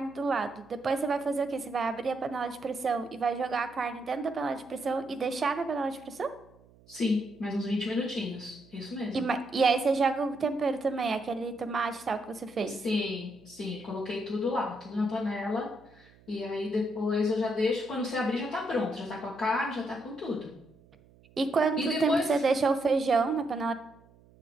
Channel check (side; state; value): right; noise; hum, 27 dB below the sound